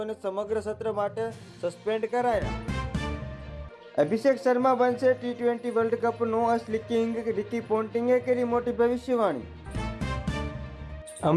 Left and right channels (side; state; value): both; identical; correlation 1.00